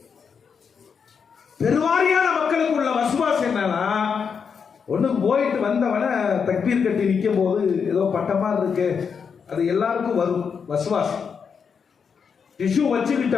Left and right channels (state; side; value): quieter; right; 6.3 dB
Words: பெருவாரியான மக்களுக்கு உள்ள வசுவாசம் என்னன்னா, ஒண்ணு போயிட்டு வந்தவன தக்பீர் கட்டி நிற்கும் போது ஏதோ பட்டமா இருக்கு, அது எல்லாருக்கும் வரும் வசுவாசம். டிஷ்யூ